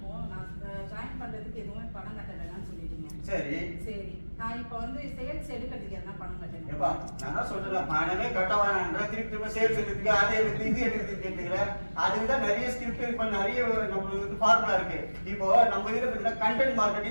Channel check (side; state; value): both; inverted; correlation -1.00